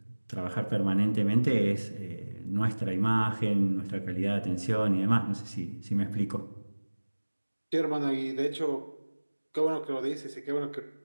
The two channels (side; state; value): both; inverted; correlation -1.00